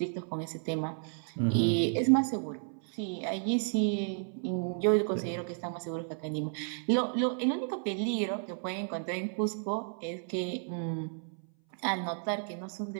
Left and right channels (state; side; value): silent; left; 56 dB below the other